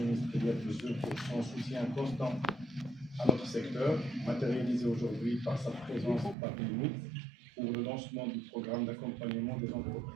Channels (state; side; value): drops out; left; at 6.4 s